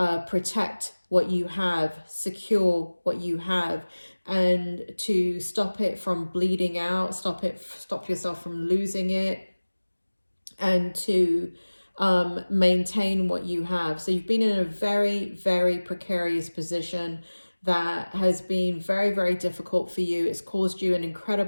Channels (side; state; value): both; inverted; correlation -1.00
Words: protect what you have, secure what you have, and to stop it from bleeding out, stop yourself from losing it, and to maintain what you have. So you've been in a very, very precarious position that has been very, very difficult for you. It's caused you an